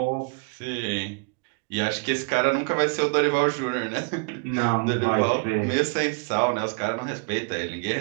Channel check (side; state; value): left; quieter; 33.3 dB